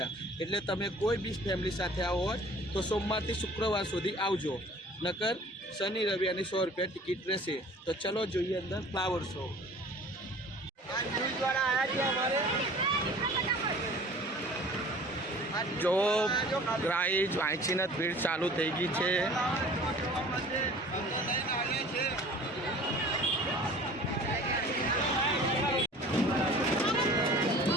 એટલે તમે કોઈ બી ફેમિલી સાથે આવો હોય તો સોમવારથી શુક્રવાર સુધી આવજો, નકર શનિ રવિ અને 100 રૂપિયા ટિકિટ રહેશે. તો ચલો જોઈએ અંદર ફ્લાવર શો. જો ગાઈઝ વાંચીને ભીડ ચાલુ થઈ ગઈ છે.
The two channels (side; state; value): both; normal; correlation 0.46